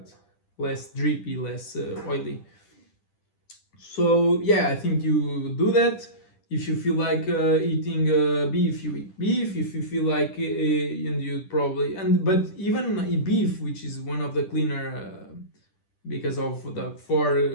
less drippy, less oily. So yeah, I think you do that. If you feel like eating beef, you eat beef. If you feel like and you probably, but even beef, which is one of the cleaner because of the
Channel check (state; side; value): late; right; 10 ms